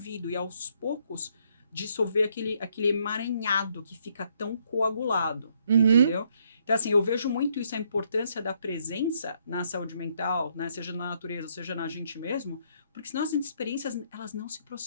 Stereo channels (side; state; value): both; inverted; correlation -0.71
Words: e aos poucos dissolver aquele emaranhado que fica tão coagulado, entendeu? Então, assim, eu vejo muito isso, a importância da presença na saúde mental, né? Seja na natureza, seja na gente mesmo, porque senão as experiências, elas não se